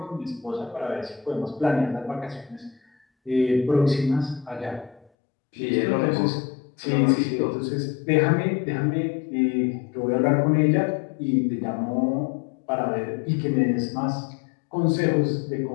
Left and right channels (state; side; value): drops out; right; at 5.1 s